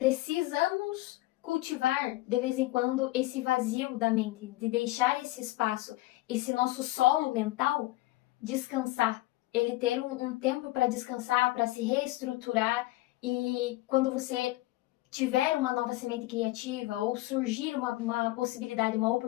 cultivar de vez em quando esse vazio da mente, de deixar esse espaço, esse nosso solo mental descansar, ele ter um tempo para descansar, para se reestruturar, e quando você tiver uma nova semente criativa ou surgir uma possibilidade, uma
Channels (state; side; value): quieter; right; 18.3 dB